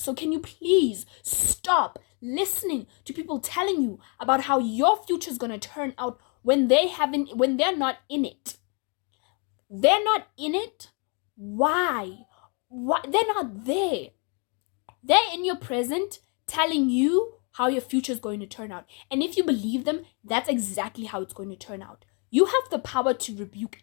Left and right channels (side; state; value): right; quieter; 36.1 dB